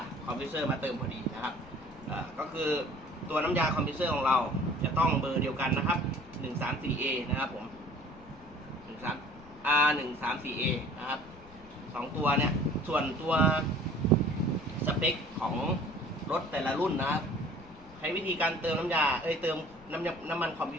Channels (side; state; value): left; noise; rumble, 22 dB below the sound